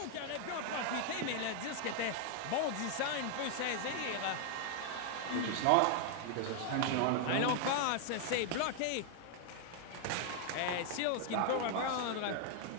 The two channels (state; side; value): different; both; correlation 0.00